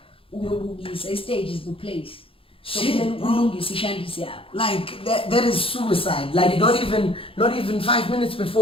the stage is the place. So like that is suicide. Like not even 5 minutes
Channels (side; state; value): right; late; 0.27 ms